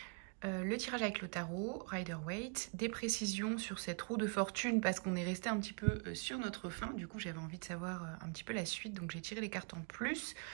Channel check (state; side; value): quieter; left; 38.1 dB